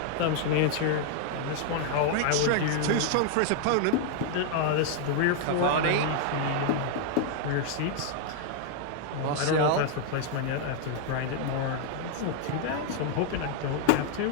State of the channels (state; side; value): different; both; correlation 0.00